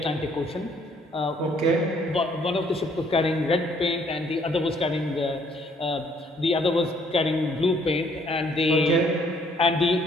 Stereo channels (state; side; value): normal; both; correlation 0.64